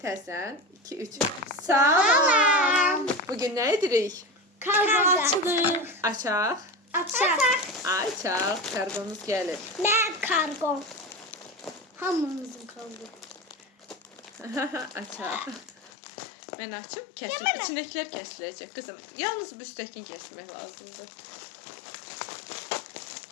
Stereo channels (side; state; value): right; drops out; at 15.9 s